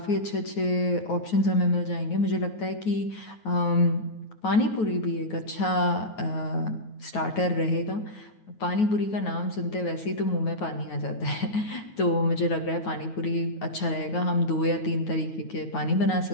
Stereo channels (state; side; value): late; right; 9.3 ms